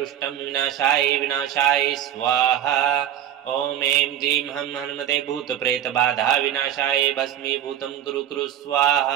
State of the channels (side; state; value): left; quieter; 11.0 dB